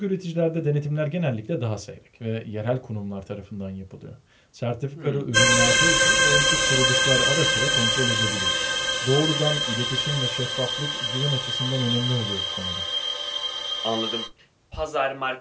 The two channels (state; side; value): identical; both; correlation 1.00